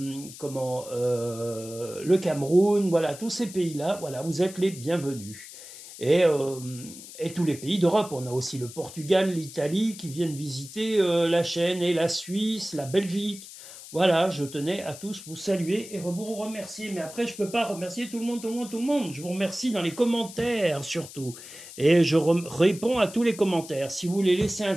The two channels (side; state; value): left; noise; hiss, 15 dB below the sound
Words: Cameroun, voilà, tous ces pays-là, voilà, vous êtes les bienvenus. Et, euh, et tous les pays d'Europe, on a aussi le Portugal, l'Italie qui viennent visiter la chaîne, et la Suisse, la Belgique. Voilà, je tenais à tous vous saluer et vous remercier. Mais après, je ne peux pas remercier tout le monde, tout le monde, tout le monde. Je vous remercie dans les commentaires surtout. Et je réponds à tous les commentaires. Si vous voulez laisser un